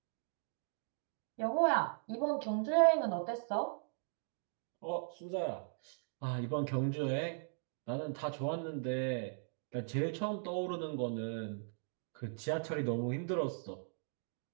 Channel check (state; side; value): silent; left; digital silence